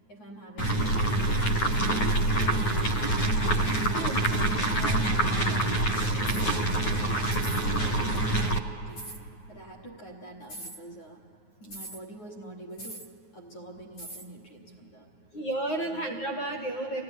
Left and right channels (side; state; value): right; late; 9.5 ms